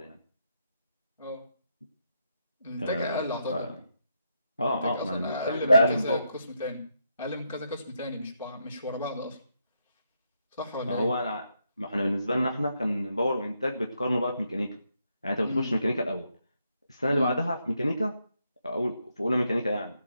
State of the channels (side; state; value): both; inverted; correlation -0.80